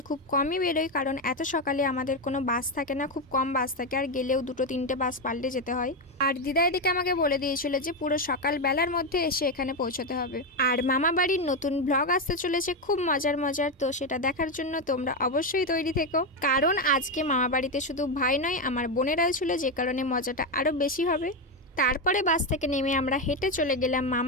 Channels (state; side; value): normal; both; correlation 0.09